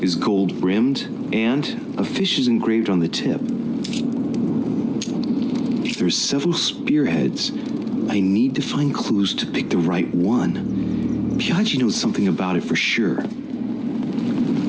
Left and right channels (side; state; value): both; identical; correlation 1.00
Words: is gold rimmed, and a fish is engraved on the tip. There's several spearheads. I need to find clues to pick the right one. Piaggi knows something about it for sure.